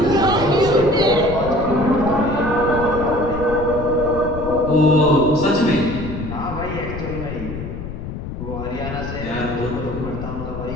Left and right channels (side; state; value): left; noise; rumble, 8 dB below the sound